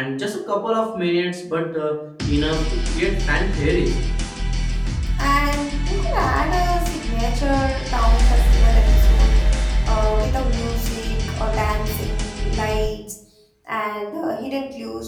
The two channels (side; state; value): both; identical; correlation 1.00